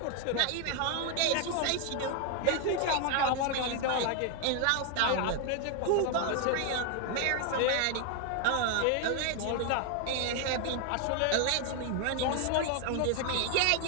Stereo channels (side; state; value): both; different; correlation 0.01